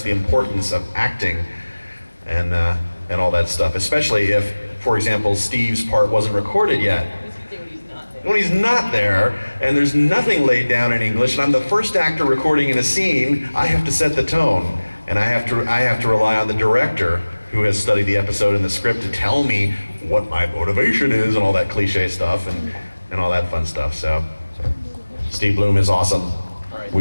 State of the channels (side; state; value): both; inverted; correlation -1.00